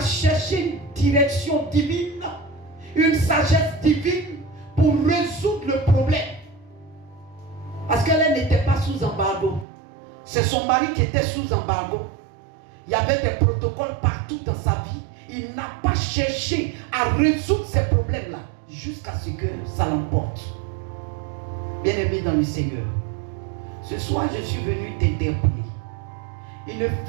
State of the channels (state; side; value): drops out; left; at 9.7 s